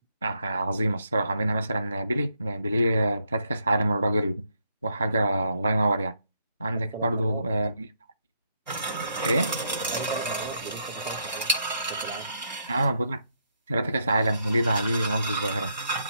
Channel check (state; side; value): inverted; both; correlation -0.77